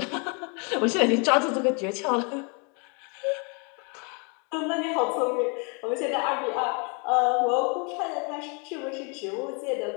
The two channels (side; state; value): right; quieter; 34.7 dB